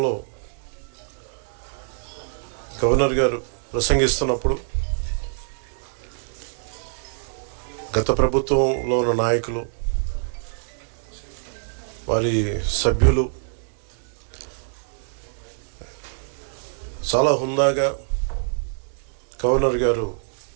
గవర్నర్ గారు ప్రసంగిస్తున్నప్పుడు గత ప్రభుత్వంలో ఉన్న నాయకులు, వారి సభ్యులు చాలా హుందాగా గవర్నర్ గారు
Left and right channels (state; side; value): silent; left; digital silence